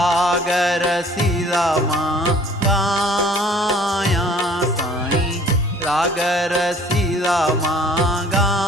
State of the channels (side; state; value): both; normal; correlation 0.53